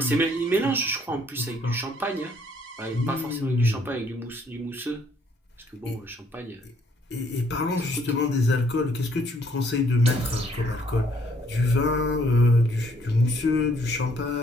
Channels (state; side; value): normal; both; correlation 0.65